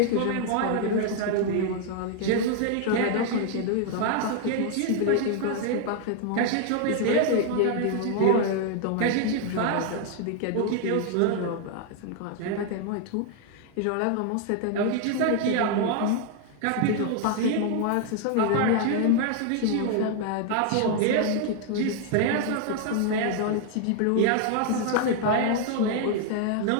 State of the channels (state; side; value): different; both; correlation 0.00